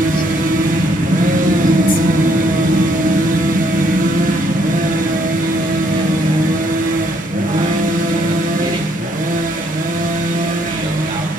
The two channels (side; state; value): both; normal; correlation 0.69